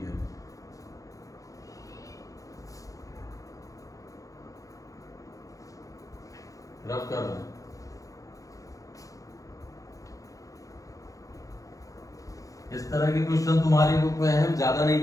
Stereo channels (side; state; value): right; late; 0.16 ms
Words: है। रफ कर रहे हैं। इस तरह के क्वेश्चन तुम्हारी बुक में है, ज्यादा नहीं